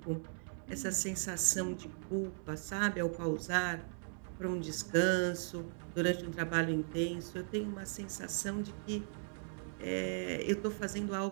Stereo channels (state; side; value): silent; left; digital silence